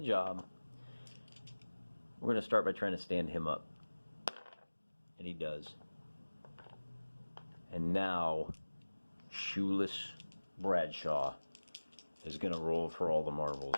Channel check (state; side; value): inverted; both; correlation -1.00